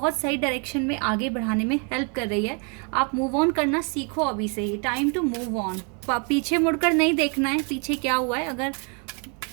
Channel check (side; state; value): left; quieter; 37.2 dB